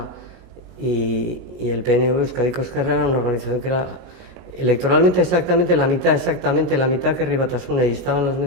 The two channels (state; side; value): late; left; 22 ms